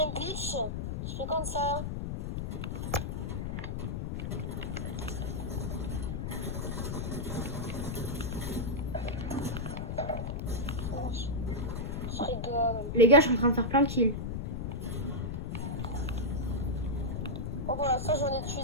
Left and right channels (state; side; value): noise; left; rumble, 3 dB below the sound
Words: un glitch. Je fais comme ça. Je rigole. Les gars, je suis en train de faire plein de kills. Bon, voilà, ça, j'en ai tué